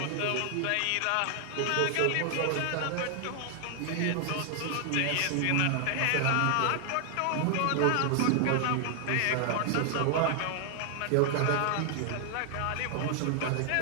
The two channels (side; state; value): both; different; correlation 0.00